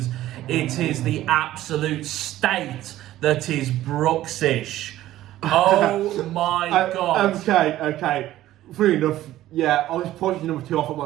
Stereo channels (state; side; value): quieter; left; 14.3 dB